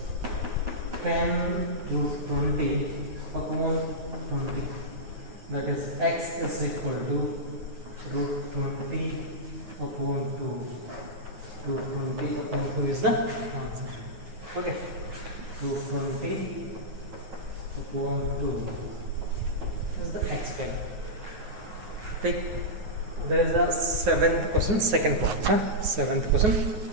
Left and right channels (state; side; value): late; left; 9.6 ms